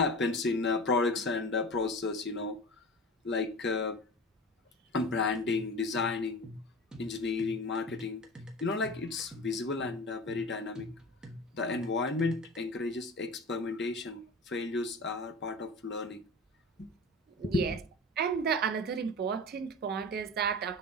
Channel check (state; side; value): normal; both; correlation 0.33